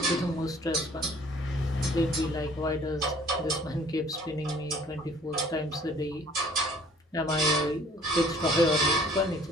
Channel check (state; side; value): normal; both; correlation 0.55